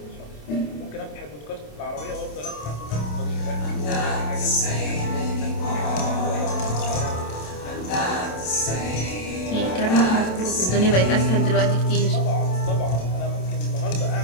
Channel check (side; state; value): right; late; 27 ms